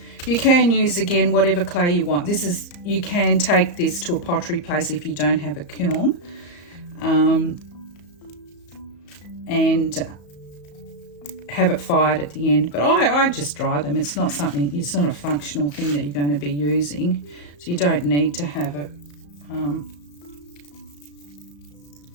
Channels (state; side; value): late; right; 34 ms